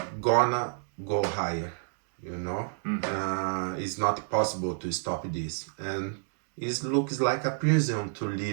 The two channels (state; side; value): silent; left; digital silence